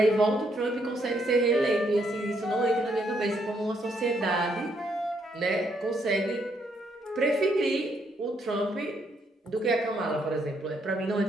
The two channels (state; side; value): normal; both; correlation 0.73